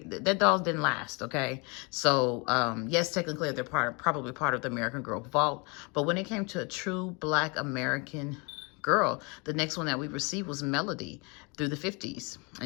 that dolls didn't last, okay? So, yes, technically they're probably part of the American Girl vault. But when it came to a true Black American girl, the next one that we received was Melody through the 50s.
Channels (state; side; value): quieter; right; 30.3 dB